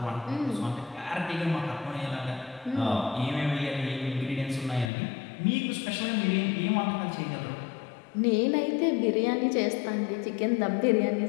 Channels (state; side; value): drops out; right; at 4.9 s